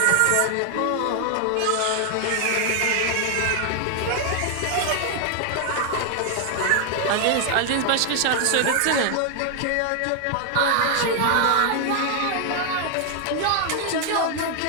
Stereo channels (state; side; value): different; both; correlation 0.00